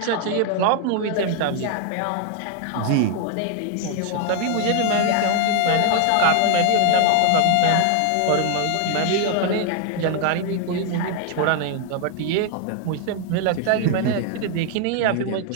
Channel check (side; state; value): both; different; correlation 0.00